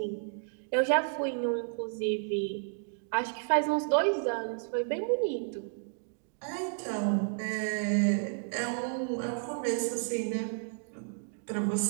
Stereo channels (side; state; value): left; silent; digital silence